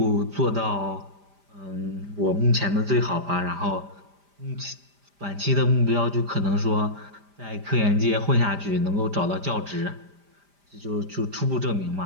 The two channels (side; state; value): left; late; 5.0 ms